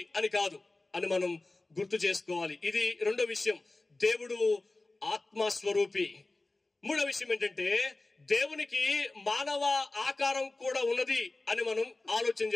అని కాదు అని మనం గుర్తు చేసుకోవాలి. ఇది రెండో విషయం, దేవుడు ఆత్మస్వరూపి. మూడో విషయం ఏంటంటే, దేవునికి మానవ ఆకారం కూడా ఉన్నది అని మనం ఆలోచన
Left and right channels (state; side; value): quieter; right; 3.1 dB